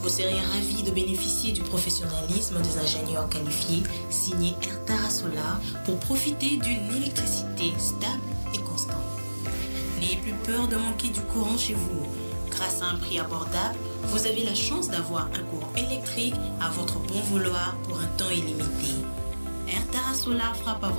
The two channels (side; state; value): both; inverted; correlation -1.00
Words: serez ravis de bénéficier du professionnalisme des ingénieurs qualifiés signés Air Tara Solar pour profiter d'une électricité stable et constante. N'ayez plus peur de manquer du courant chez vous. Grâce à un prix abordable, vous avez la chance d'avoir un courant électrique à votre bon vouloir pour un temps illimité. Air Tara Solar frappe à